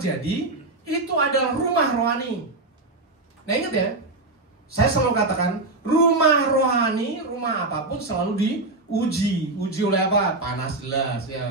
itu adalah rumah rohani. Nah ingat ya, saya selalu katakan, rumah rohani, rumah apapun selalu diuji. Uji oleh apa? Panas jelas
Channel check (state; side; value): quieter; left; 3.1 dB